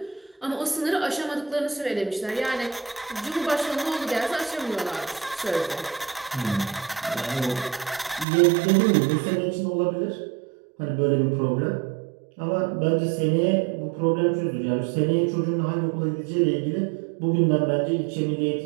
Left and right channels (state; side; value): drops out; left; at 8.2 s